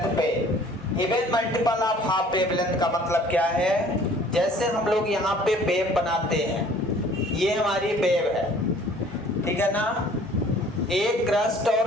पे। Even multiple of half wavelength का मतलब क्या है, जैसे हम लोग यहाँ पे वेव बनाते हैं, ये हमारी वेव है, ठीक है ना। एक क्रस्ट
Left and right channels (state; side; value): normal; both; correlation 0.53